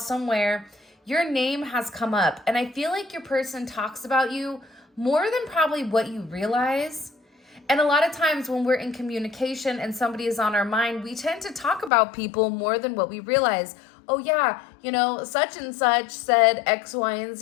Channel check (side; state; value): right; drops out; at 11.9 s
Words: your name has come up. And I feel like your person talks about you more than probably what you realize. And a lot of times when we're in communication and somebody is on our mind, we tend to talk about people more than what we realize. Oh yeah, such and such said X, Y, and